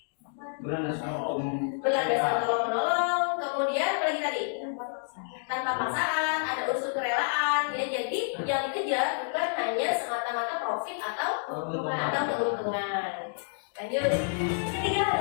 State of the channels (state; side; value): silent; right; digital silence